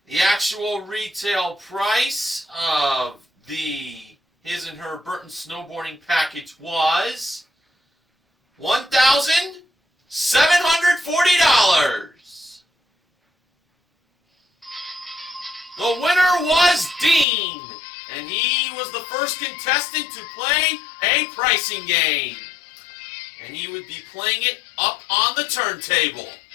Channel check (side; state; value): right; drops out; at 17.2 s